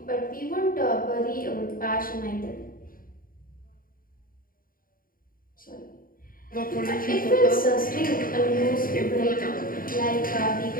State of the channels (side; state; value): right; late; 0.41 ms